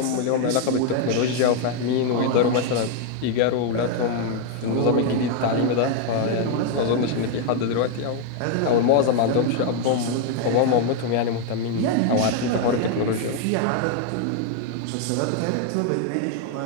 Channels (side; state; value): both; different; correlation 0.01